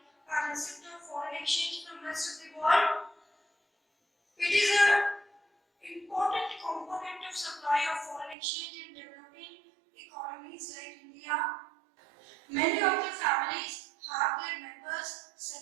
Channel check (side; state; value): left; drops out; at 8.3 s